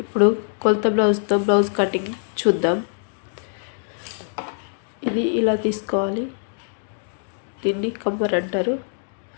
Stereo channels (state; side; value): silent; right; digital silence